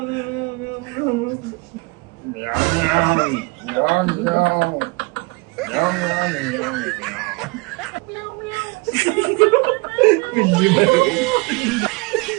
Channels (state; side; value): quieter; left; 26.2 dB